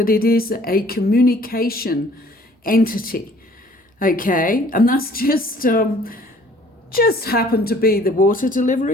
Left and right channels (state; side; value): normal; both; correlation 0.55